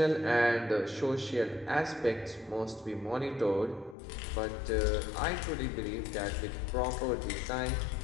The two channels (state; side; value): drops out; right; at 4.0 s